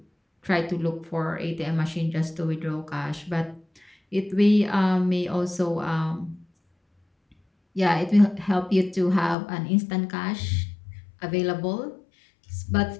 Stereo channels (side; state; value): right; drops out; at 9.3 s